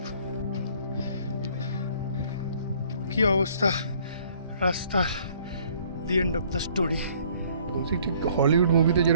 কি অবস্থা, রাস্তার the end of the story. বলছি ঠিক হলিউড মুভিতে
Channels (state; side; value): inverted; both; correlation -0.59